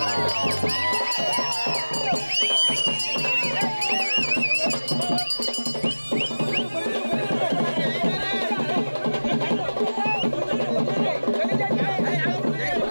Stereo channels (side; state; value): both; inverted; correlation -1.00